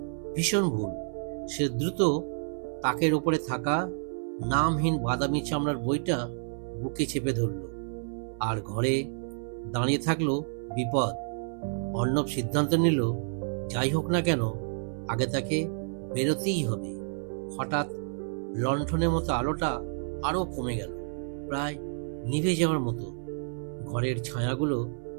ভীষণ ভুল। সে দ্রুত তাকের ওপরে থাকা নামহীন বাদামি চামড়ার বইটা বুকে চেপে ধরল, আর ঘরে দাঁড়িয়ে থাকলো বিপদ। অর্ণব সিদ্ধান্ত নিল, যাই হোক না কেন আগে তাকে বেরোতেই হবে। হঠাৎ লণ্ঠনের মতো আলোটা আরো কমে গেল, প্রায় নিভে যাওয়ার মতো। ঘরের ছায়াগুলো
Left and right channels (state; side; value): silent; left; 58 dB below the other